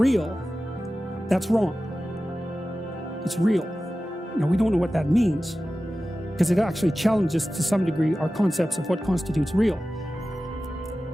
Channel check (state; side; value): normal; both; correlation 0.95